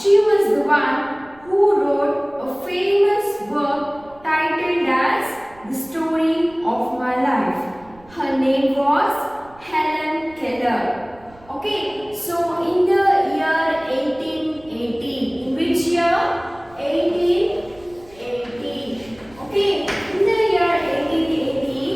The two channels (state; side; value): noise; right; rumble, 26 dB below the sound